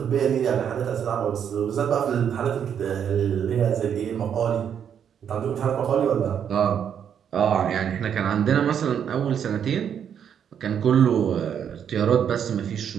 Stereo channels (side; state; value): left; quieter; 8.4 dB